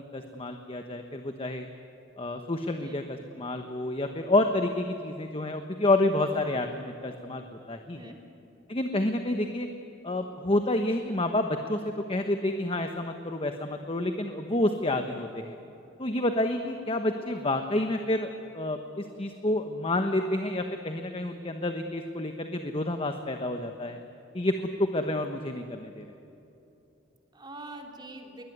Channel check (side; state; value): both; normal; correlation 0.48